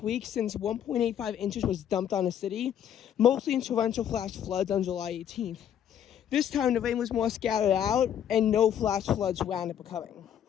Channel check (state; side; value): quieter; right; 9.6 dB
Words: since 1.85 inches was dumped on the city, mostly in torrential flash floods on July 18th. This time, the rain was more scattered out, and no flash floods wound up occurring.